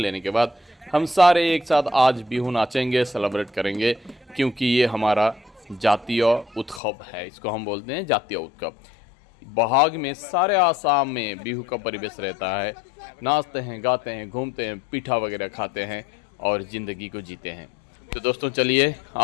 के बाद हम सारे एक साथ आज बिहू नाचेंगे, सेलिब्रेट करेंगे, क्योंकि ये हमारा जातीय उत्सव है। इसको हम बोलते हैं जातीय उत्सव। बोहाग में सारे आसाम में बिहू का परिवेश रहता है। नाचते हैं, गाते हैं, घूमते हैं, पीठा वगैरह खाते हैं और ज़िंदगी को जीते हैं। तो दोस्तों चलिए,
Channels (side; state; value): right; drops out; at 6.8 s